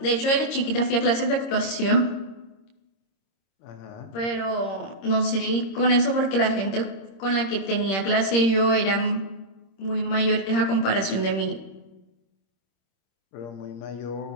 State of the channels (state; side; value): late; right; 26 ms